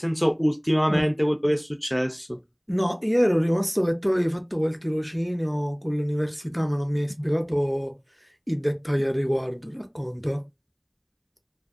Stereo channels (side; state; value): both; identical; correlation 1.00